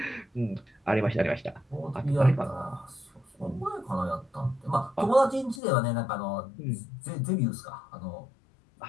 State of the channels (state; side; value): drops out; right; at 5.6 s